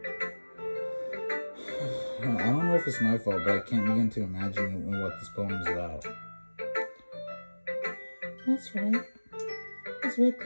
I don't know if it's my fault, but I can't begin to imagine what this poem is about. That's right. It's way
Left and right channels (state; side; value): inverted; both; correlation -1.00